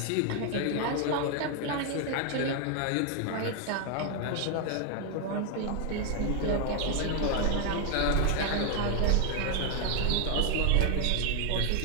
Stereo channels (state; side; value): different; both; correlation 0.00